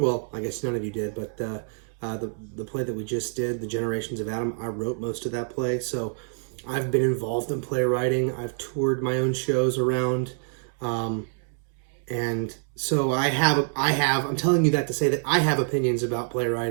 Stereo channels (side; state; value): left; silent; 60 dB below the other